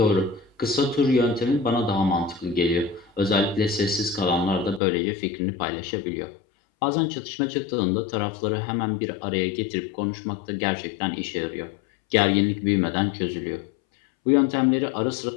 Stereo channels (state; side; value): drops out; right; at 4.8 s